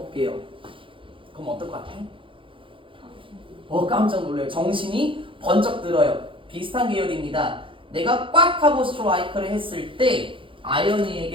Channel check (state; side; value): late; left; 0.25 ms